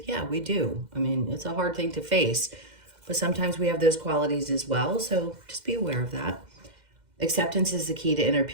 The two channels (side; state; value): left; late; 2.1 ms